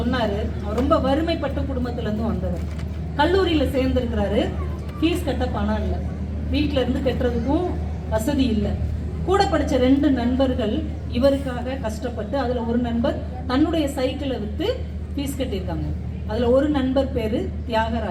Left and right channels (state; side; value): identical; both; correlation 1.00